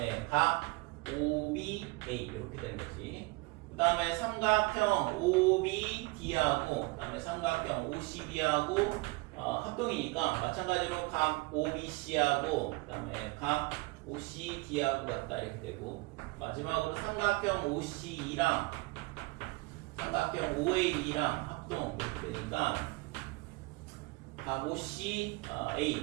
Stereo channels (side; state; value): left; quieter; 25.2 dB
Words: 각 OBA 이렇게 되는 거지. 그 다음에 삼각형 OBD하고 그 다음에 삼각형 OCB하고 합동이니까 마찬가지로 각 OBC하고 그 다음에 각 OCD하고 같다 이렇게 되고 마지막으로 삼각형 OCE랑 삼각형 OAE랑 합동 이렇게 되니까 각 OCA